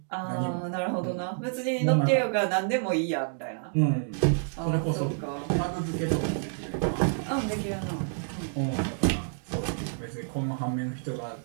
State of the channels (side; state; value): left; silent; digital silence